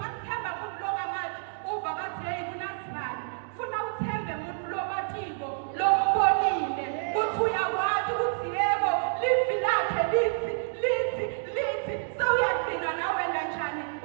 longamandla uva bathi hey kunasibani funa uthembe umuntu lomatiko lombonile ukuthi uyakwazi ukuthi yebo livi lakhe lithi sewuyagcina nawe kanjani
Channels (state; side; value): silent; left; digital silence